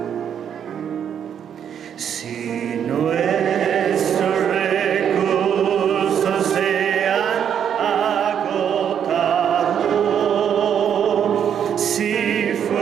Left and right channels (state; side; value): quieter; left; 8.5 dB